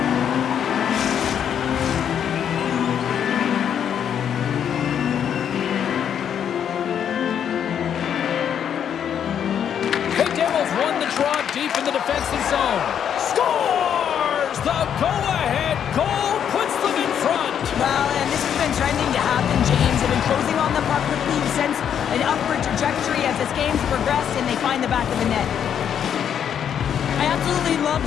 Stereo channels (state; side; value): quieter; right; 8.7 dB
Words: The Devils won the draw deep in the defensive zone. Scores! The go-ahead goal puts them in front. Well, and this has been trending to happen, James. They've been closing on the puck quickly. You sense an upward trajectory as this game's progressed, and they find the back of the net. I absolutely love